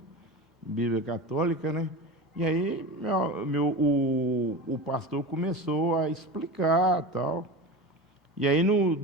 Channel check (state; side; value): normal; both; correlation 0.28